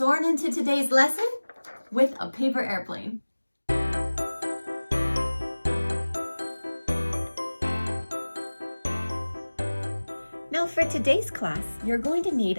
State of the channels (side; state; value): both; inverted; correlation -1.00